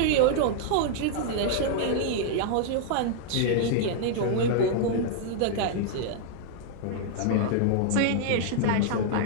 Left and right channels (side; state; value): both; different; correlation -0.01